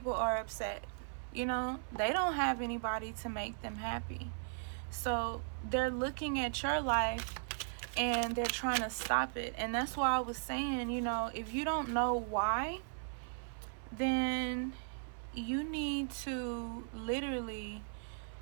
are upset. They don't have anybody to make them happy. So they're looking at your life and they're trying to stop it. And that's why I was saying, if you don't know why, then you need to literally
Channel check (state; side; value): silent; left; 53 dB below the other